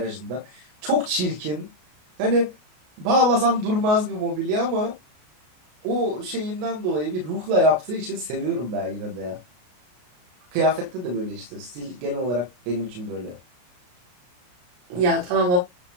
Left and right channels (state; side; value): late; left; 33 ms